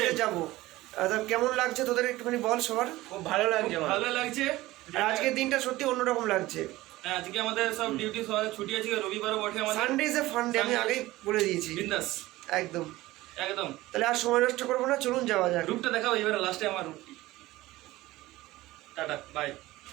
যাব। তা কেমন লাগছে তোদের একটুখানি বল। সবার খুব ভালো লাগছে, ভালো লাগছে। আজকের দিনটা সত্যি অন্যরকম লাগছে। আজকে আমাদের সব ডিউটি ছুটি আছে, রবিবারও বটে আমাদের। Sunday is a fun day, আমি আগেই বলে দিয়েছি। বিন্দাস একদম একদম। তাহলে আর সময় নষ্ট করবো না, চলুন যাওয়া যাক। রূপটা দেখাও এবারে লাস্টে আমার রূপ। Tata bye.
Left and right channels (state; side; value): quieter; left; 17.9 dB